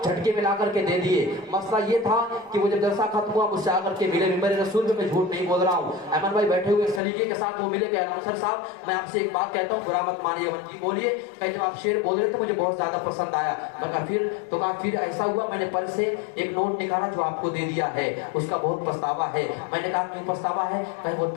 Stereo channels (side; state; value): right; drops out; at 7.0 s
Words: جھٹکے میں لا کر کے دے دیے. مسئلہ یہ تھا کہ وہ جب جلسہ ختم ہوا مجھ سے آ کر کے ملے. ممبر رسول میں جھوٹ نہیں بول رہا ہوں. احمد بھائی بیٹھے ہوئے سلیقے کے ساتھ وہ ملے کہ اناؤنسر صاحب میں آپ سے ایک بات کہتا ہوں, برا مت مانیے. جی بولیے. کہ جب آپ شعر بول رہے تو مجھے بہت زیادہ پسند آیا. میں کہا پھر, تو کہا پھر ایسا ہوا میں نے پرس سے ایک نوٹ نکالا جو آپ کو دے دیا ہے, اس کا بہت پچھتاوا ہے. میں نے کہا کیوں پچھتاوا ہے؟ کہ وہ